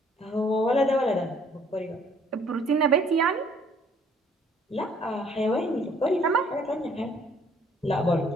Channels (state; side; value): normal; both; correlation 0.60